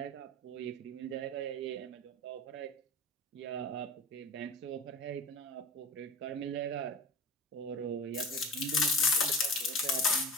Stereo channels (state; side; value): normal; both; correlation 0.33